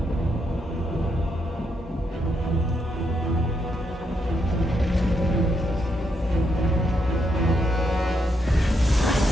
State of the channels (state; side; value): normal; both; correlation 0.79